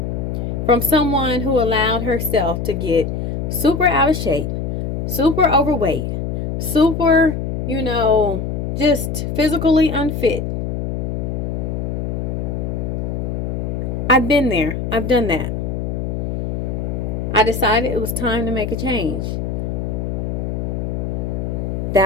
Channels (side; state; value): left; noise; hum, 2 dB below the sound